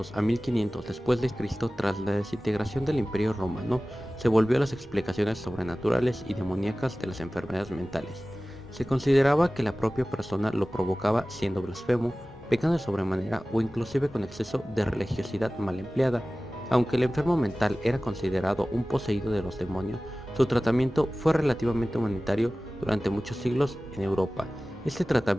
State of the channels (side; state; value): both; normal; correlation 0.97